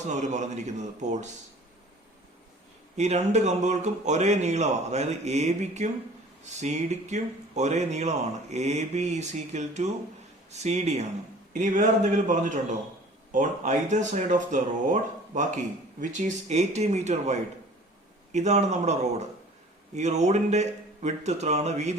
എന്ന് അവർ പറഞ്ഞിരിക്കുന്നത്. പോൾസ് ഈ രണ്ട് കമ്പുകൾക്കും ഒരേ നീളമാണ്. അതായത് എ ബിക്കും സി ഡിക്കും ഒരേ നീളമാണ്. A B is equal to C D ആണ്. ഇനി വേറെ എന്തെങ്കിലും പറഞ്ഞിട്ടുണ്ടോ? On either side of the road ബാക്കി വിച്ച് ഈസ് 80 മീറ്റർ വൈഡ്. ഇതാണ് നമ്മുടെ റോഡ്. ഈ റോഡിന്റെ വിഡ്ത്ത് എത്രയാണ്?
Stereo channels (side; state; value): both; normal; correlation 0.48